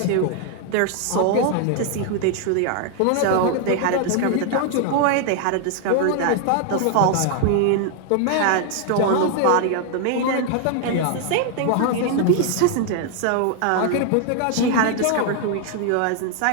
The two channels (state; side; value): different; both; correlation 0.00